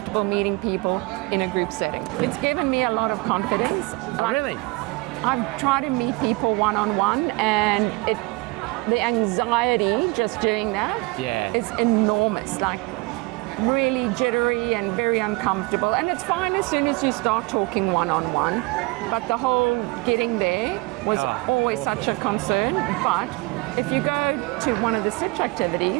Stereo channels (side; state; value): left; quieter; 24.9 dB